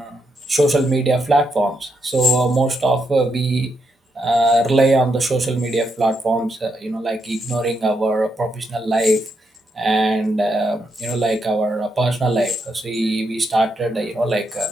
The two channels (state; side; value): normal; both; correlation 0.80